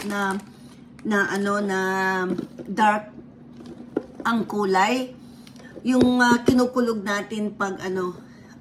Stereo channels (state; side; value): identical; both; correlation 1.00